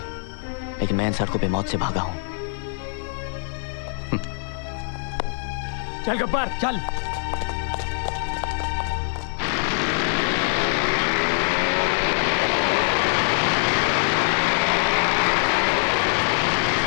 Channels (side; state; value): right; silent; 59 dB below the other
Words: लेकिन मैं इन सड़कों पे मौत से भागा हूं। चल गब्बर चल।